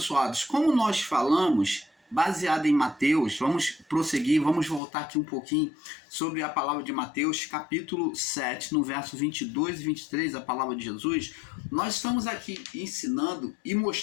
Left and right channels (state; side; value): drops out; right; at 4.8 s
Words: como nós falamos, baseado em Mateus, vamos prosseguir, vamos voltar aqui um pouquinho sobre a palavra de Mateus, capítulo 7, no verso 22 e 23, a palavra de Jesus. Nós estamos aqui ensinando e